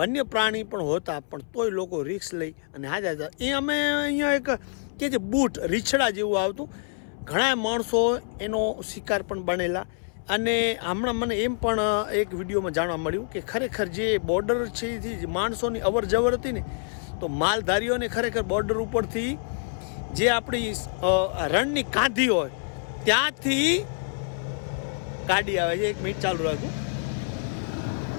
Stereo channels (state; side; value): silent; right; 60 dB below the other